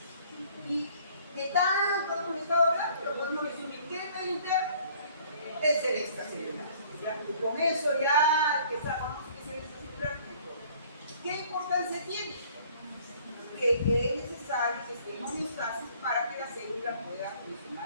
Y que tanto hemos estado hablando, lo podemos resumir. ¿Qué es medio interno? Es el extracelular. Y con eso ya que sabemos que es el extracelular, ¿qué importancia tiene? Que es necesario que esté en homeostasis para que la célula pueda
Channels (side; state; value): both; inverted; correlation -0.56